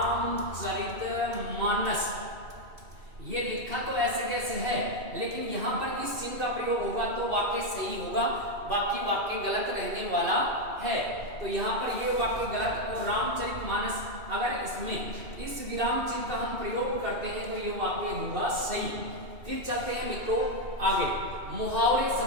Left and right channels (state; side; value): late; left; 2.7 ms